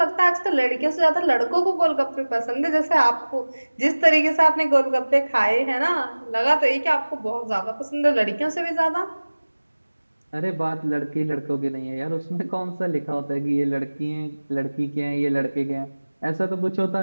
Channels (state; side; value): inverted; both; correlation -1.00